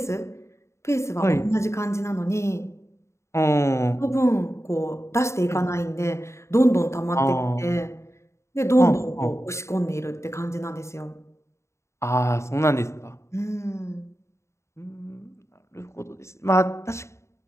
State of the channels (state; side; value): late; right; 0.14 ms